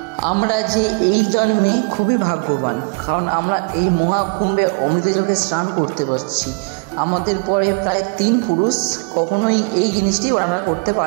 আমরা যে এই জন্মে খুবই ভাগ্যবান, কারণ আমরা এই মহাকুম্ভে অমৃতযোগে স্নান করতে পারছি। আমাদের পরে প্রায় 3 পুরুষ কখনোই এই জিনিসটি ব্যবহার করতে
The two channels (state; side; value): quieter; left; 35.9 dB